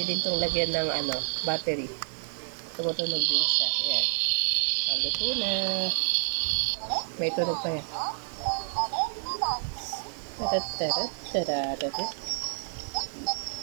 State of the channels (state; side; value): silent; left; 59 dB below the other